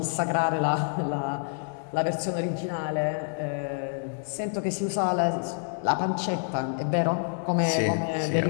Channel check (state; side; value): silent; right; 60 dB below the other